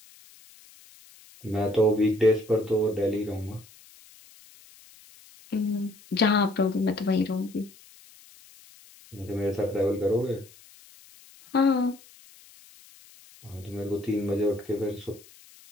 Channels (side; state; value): left; noise; hiss, 24 dB below the sound